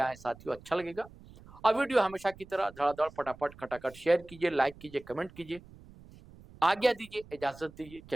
आए साथियों, अच्छा लगेगा। और वीडियो हमेशा की तरह धड़ाधड़ फटाफट खटाखट शेयर कीजिए, लाइक कीजिए, कमेंट कीजिए। आज्ञा दीजिए, इजाजत दीजिए,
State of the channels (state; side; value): noise; right; rumble, 21 dB below the sound